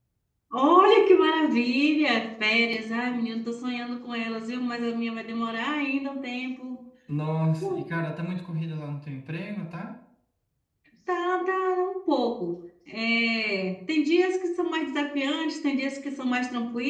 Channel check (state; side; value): identical; both; correlation 1.00